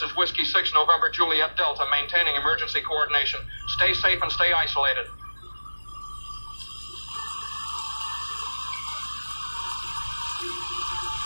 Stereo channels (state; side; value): inverted; both; correlation -1.00